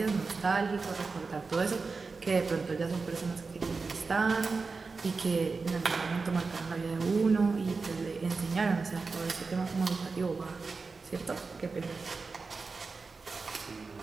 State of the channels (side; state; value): left; quieter; 4.3 dB